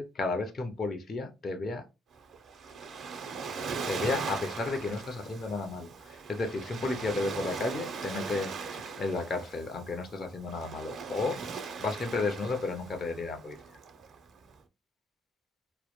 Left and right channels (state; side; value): normal; both; correlation 0.69